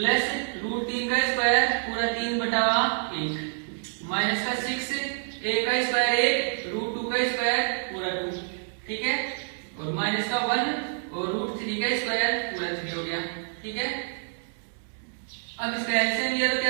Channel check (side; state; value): left; silent; digital silence